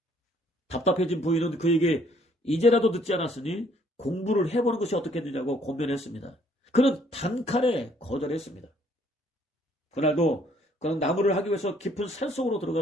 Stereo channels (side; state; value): both; normal; correlation 0.64